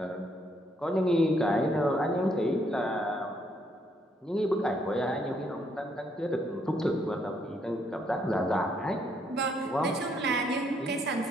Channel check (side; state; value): both; normal; correlation 0.72